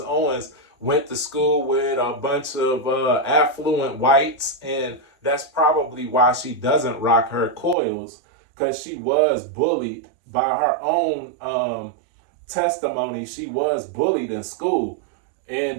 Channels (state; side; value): drops out; left; at 7.8 s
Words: went to school with a bunch of affluent whites, and that's probably why she doesn't rock her coils, because she was bullied by her own testimony. She was bullied in school,